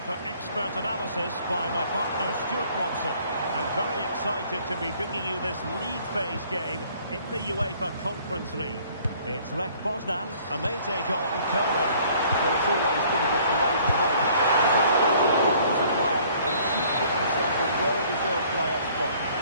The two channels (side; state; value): both; inverted; correlation -0.57